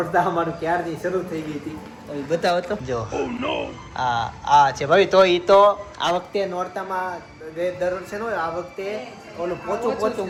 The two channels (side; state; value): both; identical; correlation 1.00